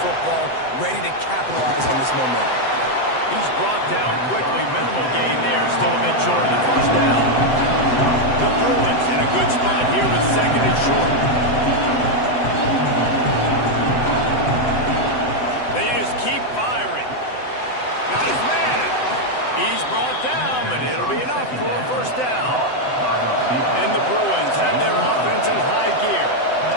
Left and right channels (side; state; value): right; late; 7.9 ms